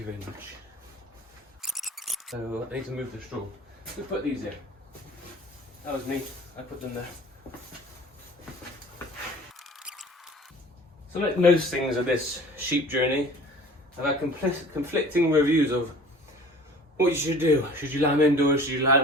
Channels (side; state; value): both; normal; correlation 0.45